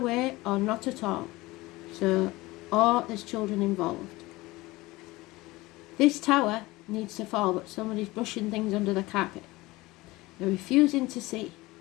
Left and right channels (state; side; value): quieter; right; 20.5 dB